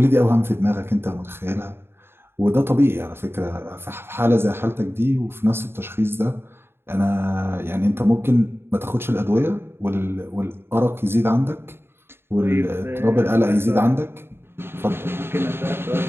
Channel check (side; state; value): left; late; 0.11 ms